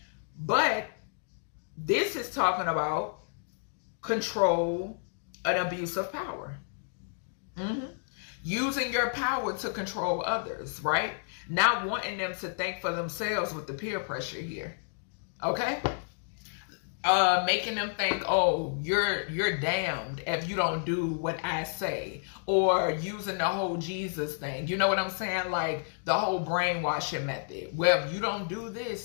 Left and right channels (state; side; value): silent; right; digital silence